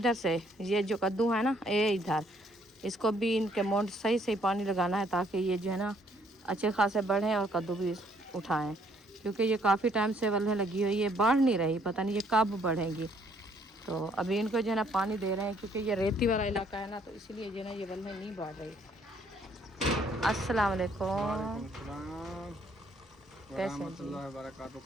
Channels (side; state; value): both; normal; correlation 0.66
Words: से ये जो कद्दू है ना ये इधर, इसको भी इनके मोंड सही से पानी लगाना है, ताकि ये जो है ना अच्छे खासे बढ़ें और कद्दू भी उठाएं। क्योंकि ये काफ़ी टाइम से वल्हें लगी हुई है, बढ़ नहीं रही, पता नहीं ये कब बढ़ेंगी। तो अभी इनको जो है ना पानी दे रहे हैं, क्योंकि ये रेती वाला इलाका है ना, तो इसीलिए जो है ना ये वल्हें नहीं बढ़ रही। अस्सलाम वालेकुम।